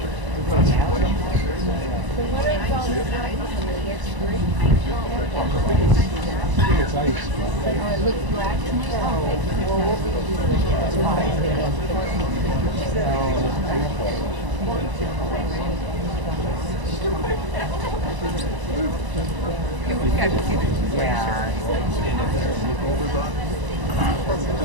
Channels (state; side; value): late; left; 1.0 ms